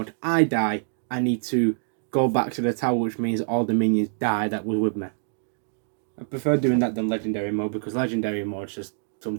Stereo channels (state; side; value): silent; left; digital silence